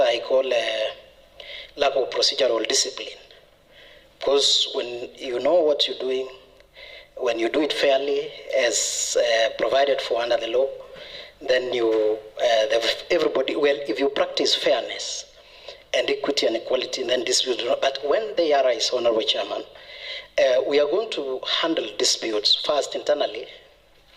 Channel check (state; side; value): identical; both; correlation 1.00